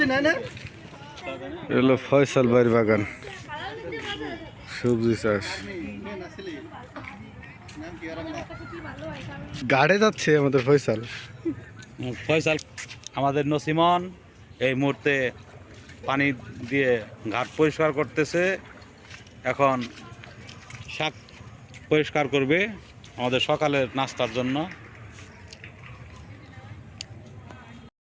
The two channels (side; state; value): both; identical; correlation 1.00